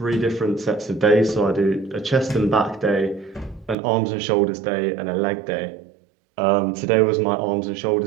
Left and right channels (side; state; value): left; drops out; at 3.8 s